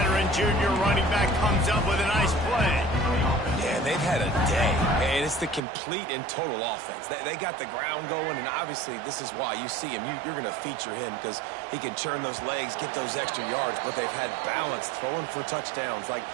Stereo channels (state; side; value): drops out; left; at 5.6 s